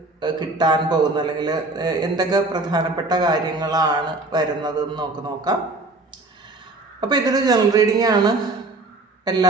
കിട്ടാൻ പോകുന്നത്, അല്ലെങ്കിൽ എന്തൊക്കെ പ്രധാനപ്പെട്ട കാര്യങ്ങളാണ് വരുന്നതെന്ന് നോക്കാം. അപ്പോൾ ഇതൊരു ജനറൽ റീഡിംഗ് ആണ്.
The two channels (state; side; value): quieter; left; 3.0 dB